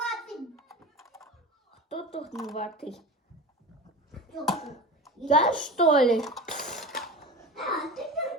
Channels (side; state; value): both; normal; correlation 0.31